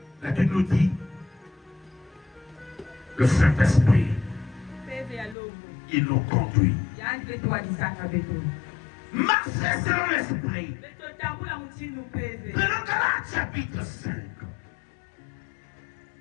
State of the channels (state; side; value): drops out; right; at 5.4 s